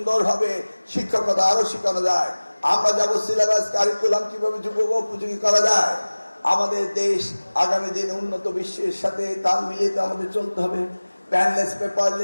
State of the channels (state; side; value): inverted; both; correlation -1.00